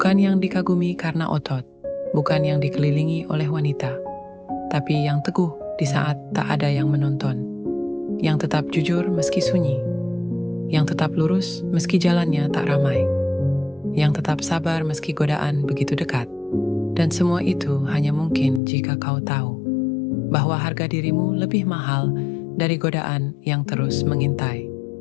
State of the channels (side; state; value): right; drops out; at 18.6 s